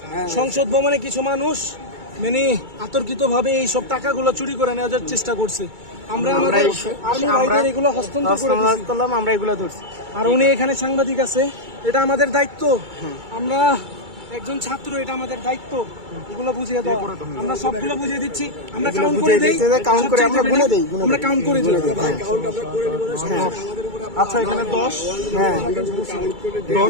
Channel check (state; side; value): late; left; 2.3 ms